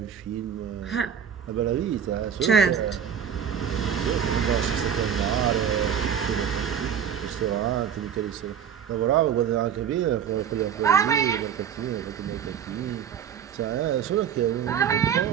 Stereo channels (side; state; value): left; quieter; 8.4 dB